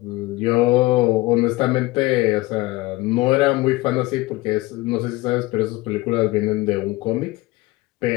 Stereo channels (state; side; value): quieter; right; 20.5 dB